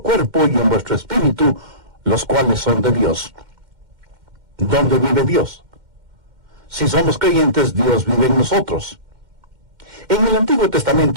cuerpo y en vuestro espíritu, los cuales son de Dios. ¿Dónde vive Dios? Si somos creyentes, Dios vive en nosotros. En el Antiguo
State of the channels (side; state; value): left; late; 2.1 ms